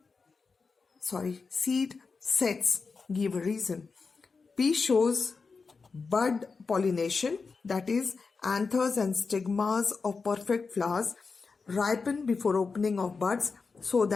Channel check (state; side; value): quieter; right; 4.7 dB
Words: sets. Give a reason. Pea shows bud pollination, that is, anthers and stigmas of perfect flowers ripen before opening of buds so